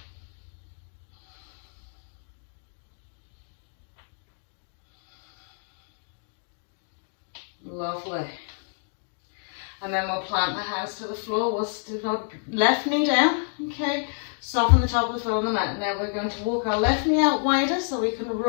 Lovely. And then we'll plant the hands to the floor. We'll stick our left knee down. Okay. Soften the top of the foot on the mat. Now we're going to walk our left knee out wider so we can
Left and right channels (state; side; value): silent; right; 59 dB below the other